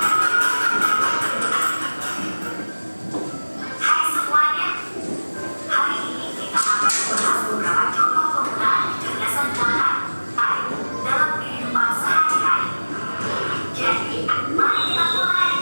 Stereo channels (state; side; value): inverted; both; correlation -1.00